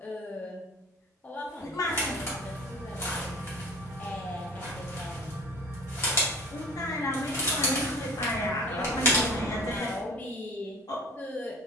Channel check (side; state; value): both; normal; correlation 0.40